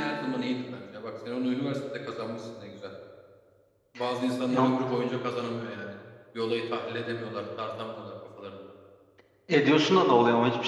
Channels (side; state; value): both; identical; correlation 1.00